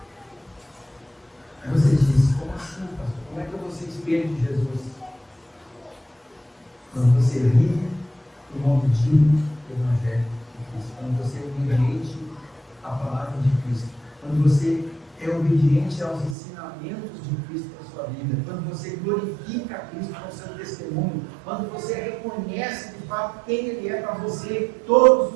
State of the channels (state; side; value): drops out; left; at 16.4 s